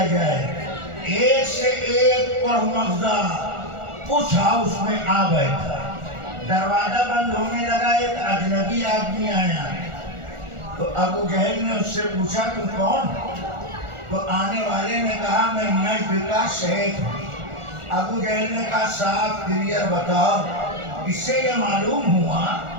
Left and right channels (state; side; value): late; left; 1.4 ms